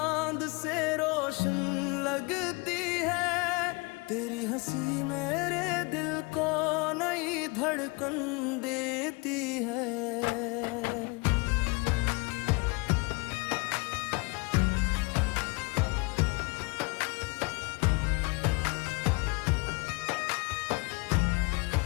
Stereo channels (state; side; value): quieter; right; 27.8 dB